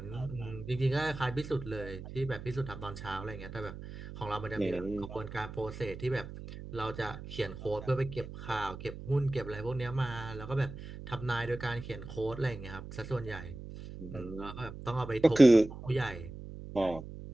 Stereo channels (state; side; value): noise; right; hum, 11 dB below the sound